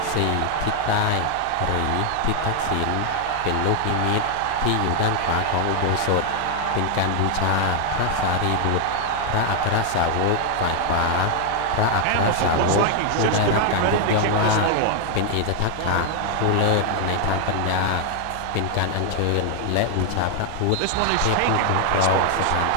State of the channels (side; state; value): both; different; correlation 0.00